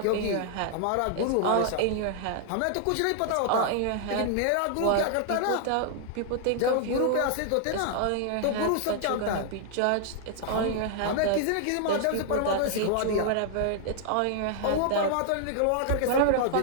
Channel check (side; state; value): both; different; correlation 0.00